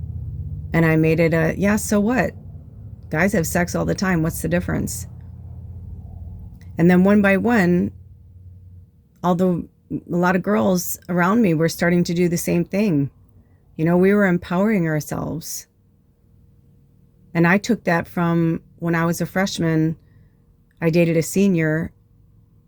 And I made it yeah, so what? Guys have sex all the time. What's the difference? And then one by one, a lot of girls around me were starting to do the same thing. We were empowering ourselves. And I took that from when I was a freshman. I dated a senior,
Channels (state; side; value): identical; both; correlation 1.00